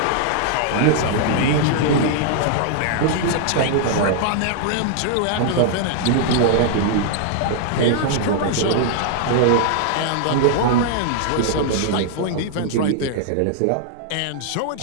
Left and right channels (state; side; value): different; both; correlation -0.01